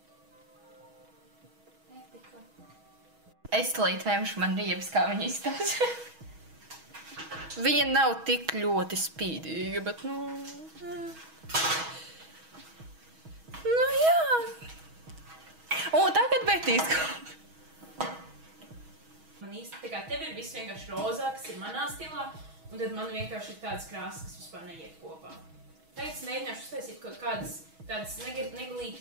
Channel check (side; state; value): left; late; 6.2 ms